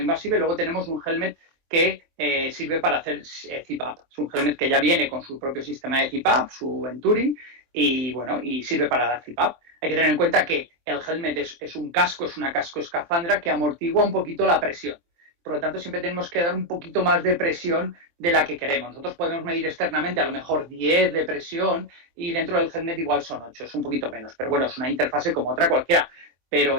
y luego tenemos un helmet que sirve para hacer CPAP. Es un helmet que ya viene con su propio sistema de CPAP, su Venturi, y bueno, y sirve para dar CPAP. Hay que tener en cuenta que el helmet es un casco, es una casco escafandra que amortigua un poquito la presión. Por lo tanto, siempre tenemos que dar un poquito más de presión de la que queremos. Nosotros podemos medir externamente a lo mejor 10 de presión y dentro del helmet igual son 8, es un poquito menos. Pero bueno, es una interfase como otra cualquiera. Pero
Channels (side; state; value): left; late; 23 ms